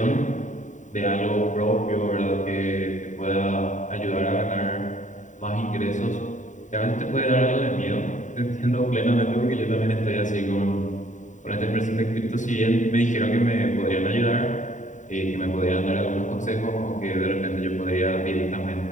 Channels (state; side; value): late; right; 0.36 ms